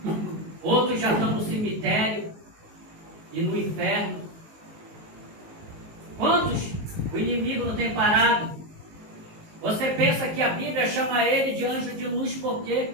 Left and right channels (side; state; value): left; late; 19 ms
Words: outros já estão no cemitério e no inferno. Quantos o inimigo não tem parado? Você pensa que a Bíblia chama ele de anjo de luz por quê?